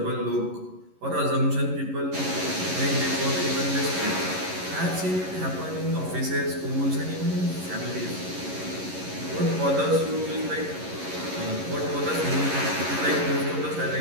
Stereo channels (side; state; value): left; late; 11 ms